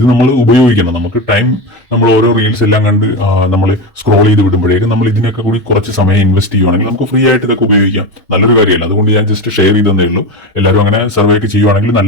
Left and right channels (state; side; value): normal; both; correlation 0.19